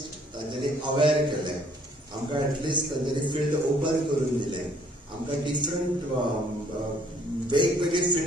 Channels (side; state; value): both; normal; correlation 0.62